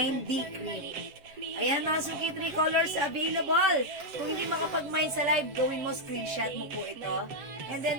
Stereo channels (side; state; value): left; late; 7.3 ms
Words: D. Cream. Ayan mga suki, 3 colors available. Kung hindi makapag-mine sa live, gawin mo, screenshot mo po ito. And